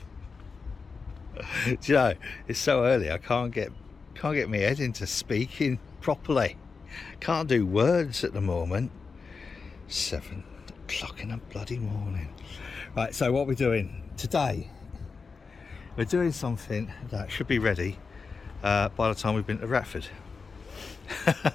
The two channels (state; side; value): quieter; right; 4.8 dB